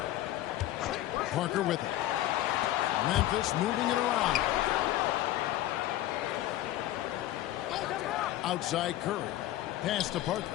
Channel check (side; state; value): right; quieter; 14.5 dB